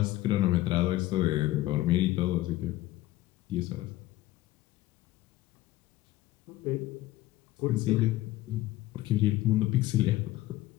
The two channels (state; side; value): quieter; right; 16.4 dB